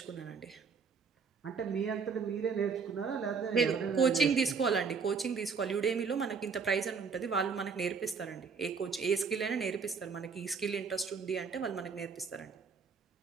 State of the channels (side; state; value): left; quieter; 5.6 dB